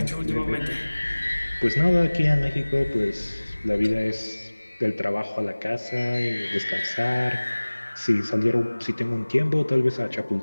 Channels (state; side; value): inverted; both; correlation -1.00